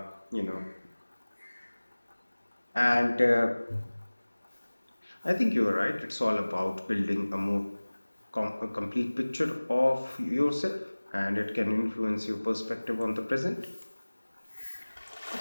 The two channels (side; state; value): both; inverted; correlation -1.00